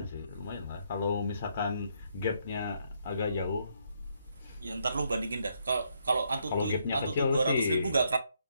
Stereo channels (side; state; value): both; inverted; correlation -0.74